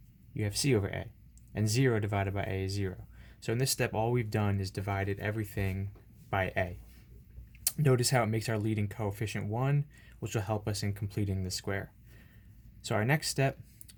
you have c over a. And 0 divided by a is 0. So in this step, all we've done is divided everything by a. Notice how it makes our leading coefficient 1, which will help us in completing the square. So our next step,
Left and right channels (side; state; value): both; identical; correlation 1.00